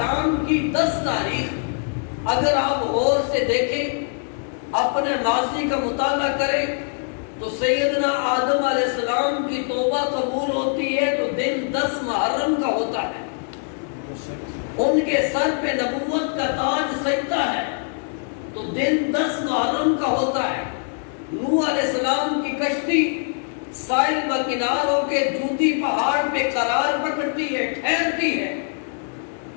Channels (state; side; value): silent; right; 56 dB below the other